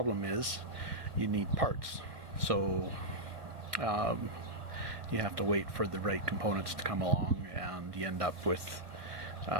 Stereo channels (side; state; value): left; late; 1.3 ms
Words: is, you need parts. So you have to wait for the right components to come along, and you end up with